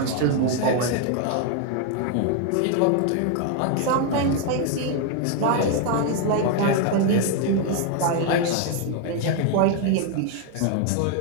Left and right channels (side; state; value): both; different; correlation 0.01